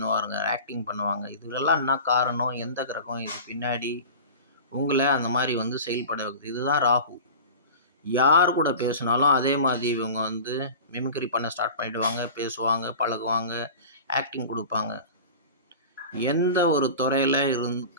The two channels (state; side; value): inverted; both; correlation -0.36